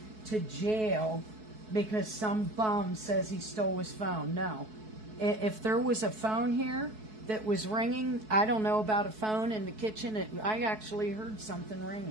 to jail because some bum says he stole his phone. No. If there was a phone here that was ringing, I don't know about a phone in the kitchen. I actually heard something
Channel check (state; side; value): late; left; 4.6 ms